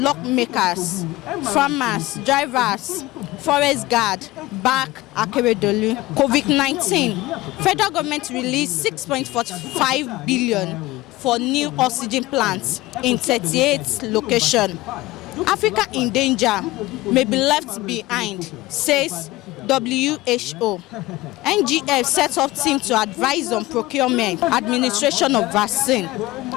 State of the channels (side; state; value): right; quieter; 18.8 dB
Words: farmers, drivers, forest guard, back Akeredolu. COVID-19. Federal government released 6.45 billion for new oxygen plants in 38 locations. Africa in danger may be left behind, says WHO. NGF set up team to advise on procurement, administration of vaccine.